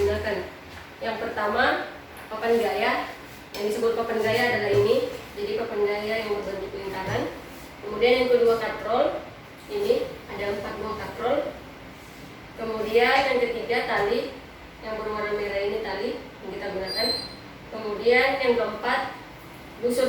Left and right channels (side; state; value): both; identical; correlation 1.00